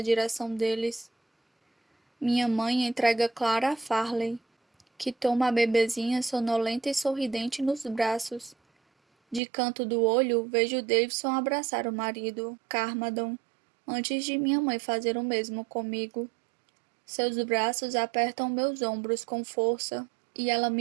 direção deles. Minha mãe entrega Clara a Farley, que toma a bebezinha sonolenta e sorridente nos braços. De canto do olho, vejo Davidson abraçar o marido, Carmadon, antes de minha mãe fazer o mesmo comigo. Seus braços apertam meus ombros com força, e ela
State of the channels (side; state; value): left; drops out; at 9.4 s